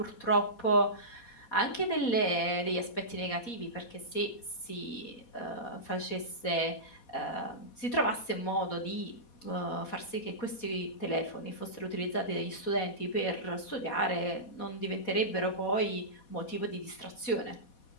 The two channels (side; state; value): right; late; 4.2 ms